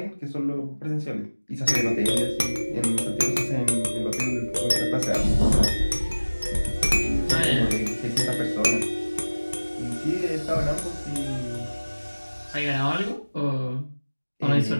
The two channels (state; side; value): inverted; both; correlation -1.00